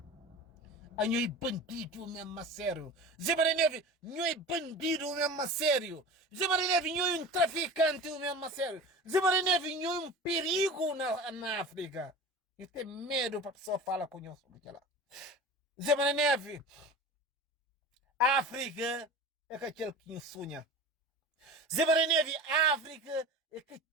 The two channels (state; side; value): normal; both; correlation 0.35